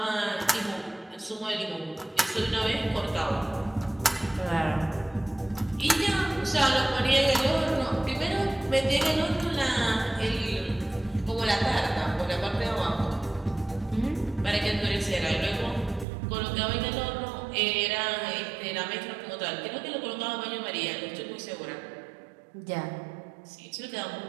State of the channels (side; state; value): left; drops out; at 16.1 s